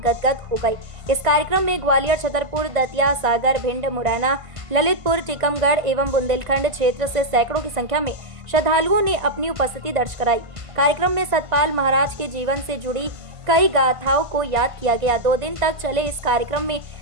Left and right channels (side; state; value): left; late; 1.5 ms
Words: हो गए। इस कार्यक्रम में ग्वालियर, छतरपुर, दतिया, सागर, भिंड, मुरैना, ललितपुर, टीकमगढ़ एवं बुंदेलखंड क्षेत्र से सैकड़ों की संख्या में श्रद्धालुओं ने अपनी उपस्थिति दर्ज कराई। कार्यक्रम में सतपाल महाराज के जीवन से जुड़ी कई गाथाओं को याद किया गया। 2 दिन तक चले इस कार्यक्रम में